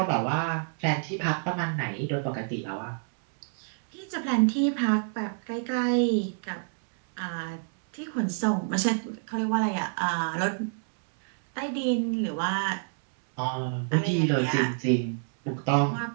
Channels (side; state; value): left; silent; digital silence